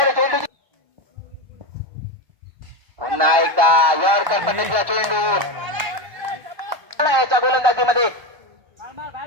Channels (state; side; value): late; left; 1.2 ms